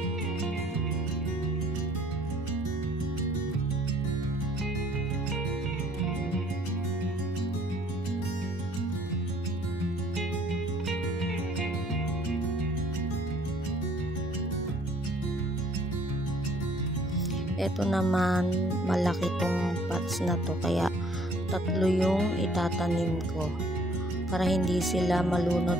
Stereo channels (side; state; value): both; normal; correlation 0.59